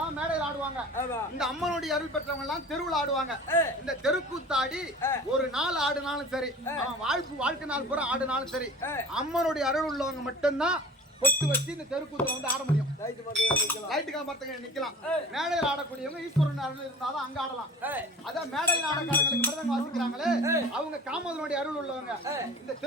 மேடையில் ஆடுவாங்க, இந்த அம்மனுடைய அருள் பெற்றவங்க எல்லாம் தெருவில் ஆடுவாங்க. இந்த தெருக்கூத்தாடி ஒரு நாள் ஆடுனாலும் சரி, வாழ்க்கை நாள் பூரா ஆடுனாலும் சரி, அம்மனுடைய அருள் உள்ளவங்க மட்டும்தான் பொட்டு வச்சு இந்த தெருக்கூத்துல வந்து ஆட முடியும். லைட்டுக்கா மரத்துக்கு நிக்கலாம். மேடையில் ஆடக்கூடியவங்க ஈஸ்வரன் அருள் இருந்தாதான் அங்க ஆடலாம். அதான் மேடையில் ஆடக்காரங்களுக்கு மிருதங்கம் வாசிக்கிறாங்களே, அவங்க காமதனுடைய அருள் உள்ளவங்க. இந்த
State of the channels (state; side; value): normal; both; correlation 0.40